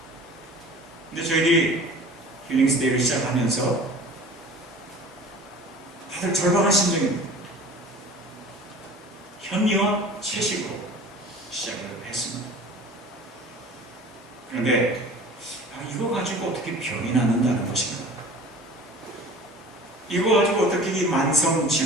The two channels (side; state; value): both; normal; correlation 0.43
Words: 근데 저희들이 힐링스데이를 시작하면서 다들 절박한 심정입니다. 현미와 채식으로 시작을 했습니다. 그런데 이거 가지고 어떻게 병이 낫는다는 것인가? 이거 가지고 어떻게 이 만성